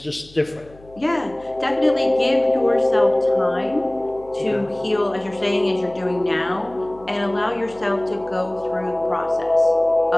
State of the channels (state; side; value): noise; left; hum, 24 dB below the sound